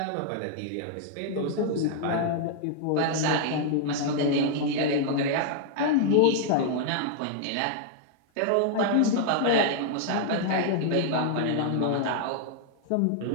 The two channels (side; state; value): both; different; correlation -0.01